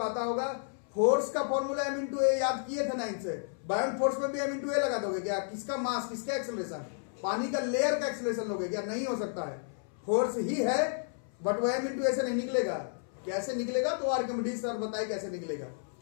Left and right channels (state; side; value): silent; right; 57 dB below the other